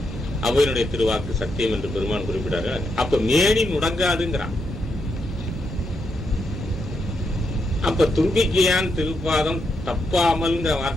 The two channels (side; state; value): both; normal; correlation 0.81